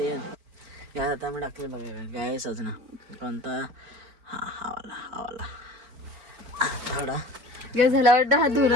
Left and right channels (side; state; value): left; late; 4.4 ms